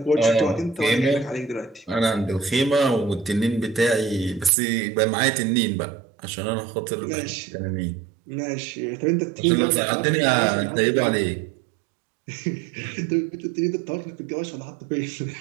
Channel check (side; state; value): left; drops out; at 4.5 s